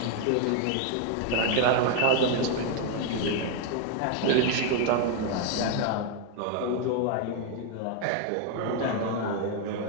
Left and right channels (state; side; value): different; both; correlation 0.01